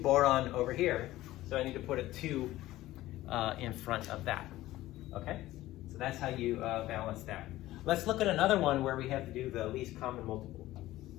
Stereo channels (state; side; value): quieter; right; 16.1 dB